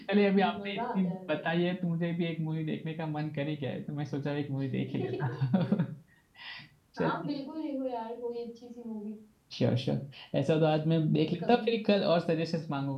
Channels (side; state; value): both; identical; correlation 1.00